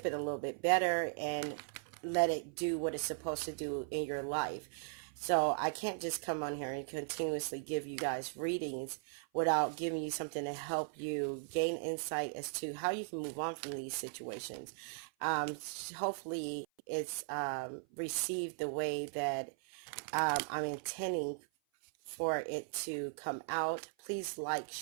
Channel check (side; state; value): left; silent; 52 dB below the other